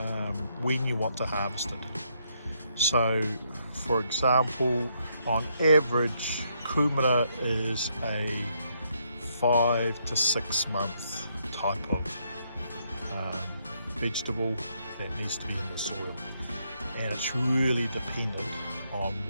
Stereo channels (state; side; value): inverted; both; correlation -0.74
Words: when you want to harvest it? So for example, on average kumara is a 5 to 6 month type of vegetable that needs to be in the soil, and it's really dependent on